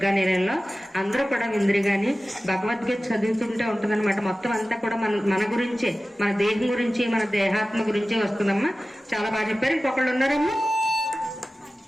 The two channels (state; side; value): normal; both; correlation 0.95